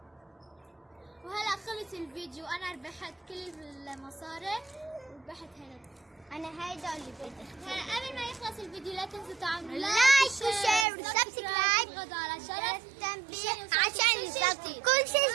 وهلا خلص الفيديو. انا ربحت كل المصاري وربحت هنا. أنا هيدا اللي بدي. هلا قبل ما يخلص الفيديو لا تنسوا تعملوا لايك وشير وسبسكرايب وتضغطوا على الجرس التنبيه عشان كل شيء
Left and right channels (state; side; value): drops out; left; at 10.9 s